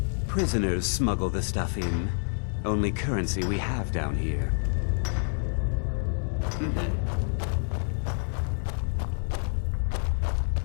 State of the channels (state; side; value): silent; right; 59 dB below the other